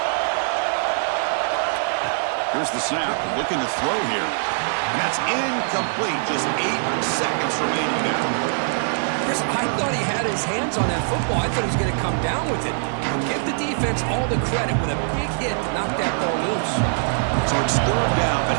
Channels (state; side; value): silent; left; 64 dB below the other